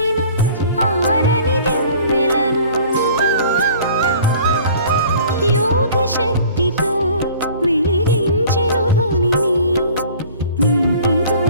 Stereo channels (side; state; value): both; inverted; correlation -0.49